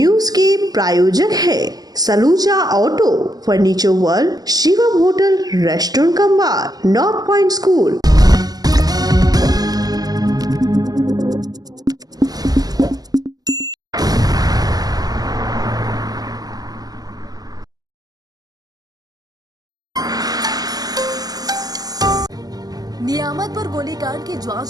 के प्रायोजक है Saluja auto, furniture world, Shivam hotel, restaurant cum bar, north point school. Niamatpur गोलीकांड की जांच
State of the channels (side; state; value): left; late; 0.18 ms